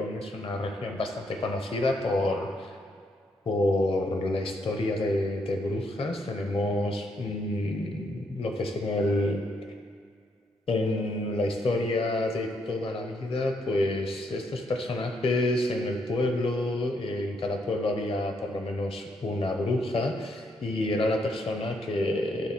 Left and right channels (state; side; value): normal; both; correlation 0.75